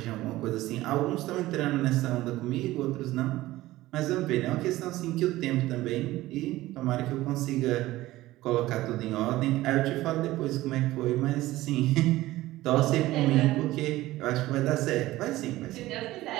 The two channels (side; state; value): left; quieter; 16.9 dB